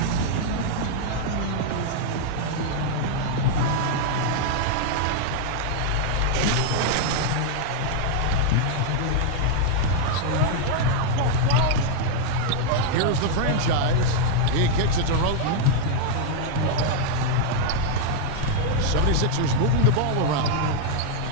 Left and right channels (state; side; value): different; both; correlation 0.00